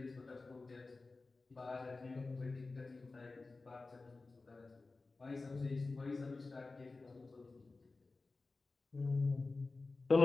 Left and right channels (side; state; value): right; quieter; 3.7 dB